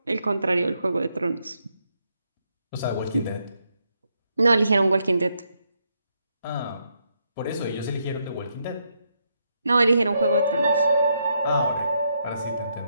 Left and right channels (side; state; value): both; inverted; correlation -0.78